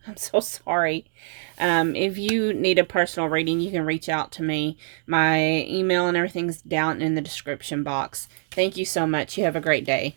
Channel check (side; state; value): left; silent; 63 dB below the other